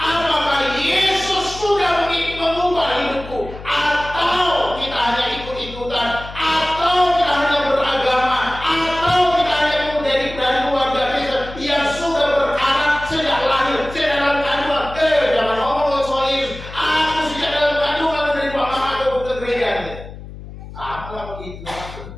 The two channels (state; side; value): noise; left; hum, 14 dB below the sound